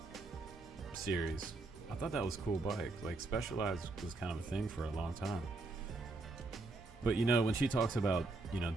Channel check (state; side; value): quieter; left; 3.2 dB